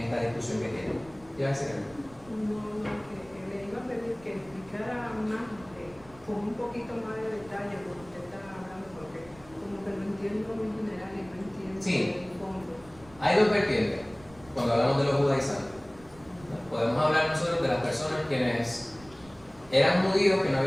esta discusión que tienen. ¿Qué va a decir? No, que le iba a pedir que explicara más, con un poquito más de detalle lo que usted está hablando, porque como que lo entiendo muy general y no entiendo Sí. el fondo. Hay dos vertientes cuando hablamos de los judaizantes. Podemos hablar nosotros de las personas quienes eran judíos que no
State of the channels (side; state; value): right; noise; rumble, 23 dB below the sound